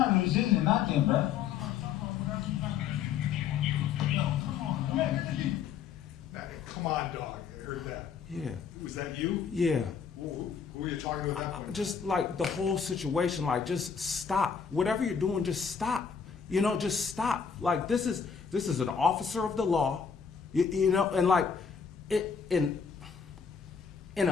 resisting nothing, bro. Now, come on, dog. I heard that. Yeah, Was that you? yeah. Who were you talking to at that point? Just like the whole situation, like just stop. Whatever you're doing, just stop. Just stop. Like this is an officer of the law, and like in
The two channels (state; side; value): quieter; right; 6.8 dB